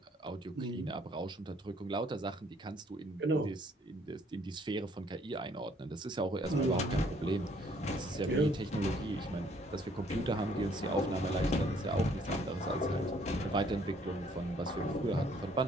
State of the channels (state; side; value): normal; both; correlation 0.63